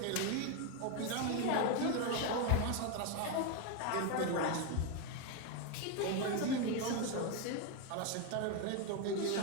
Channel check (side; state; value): both; different; correlation 0.01